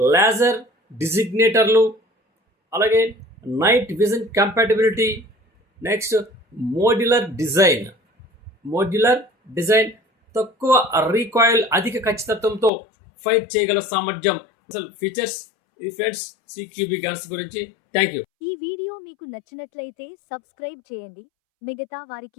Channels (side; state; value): right; drops out; at 12.7 s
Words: లేజర్ డిజిగ్నేటర్లు, అలాగే night vision compatibility, next modular design, తక్కువ రీకాయిల్, అధిక ఖచ్చితత్వంతో ఫైర్ చేయగల సామర్థ్యం. అసలు ఫీచర్స్ ఈ ఫ్రెండ్స్ సిక్యూబి గన్స్ గురించి. Thank you. ఈ వీడియో మీకు నచ్చినట్లయితే సబ్స్క్రైబ్ చేయండి, మిగతా